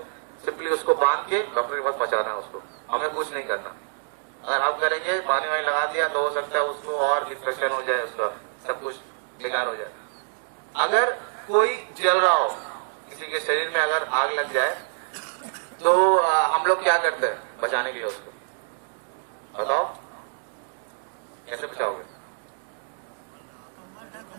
सिंपली उसको बांध के डॉक्टर के पास पहुंचाना है उसको, हमें कुछ नहीं करना। अगर हम करेंगे पानी वानी लगा दिया तो हो सकता है उसको और इन्फेक्शन हो जाए, उसका सब कुछ बेकार हो जाए। अगर कोई जल रहा हो, किसी के शरीर में अगर आग लग जाए तो हम लोग क्या करते हैं बचाने के लिए उसको, बताओ कैसे बचाओगे?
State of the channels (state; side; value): silent; left; digital silence